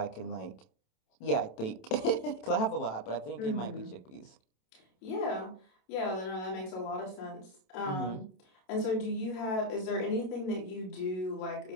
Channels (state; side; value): late; right; 27 ms